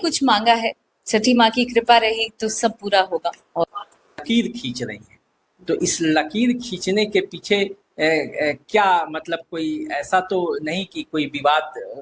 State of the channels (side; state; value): both; identical; correlation 1.00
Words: कुछ मांगा है, छठी माँ की कृपा रही तो सब पूरा होगा। और लकीर खींच रही हैं, तो इस लकीर खींचने के पीछे क्या मतलब कोई ऐसा तो नहीं कि कोई विवाद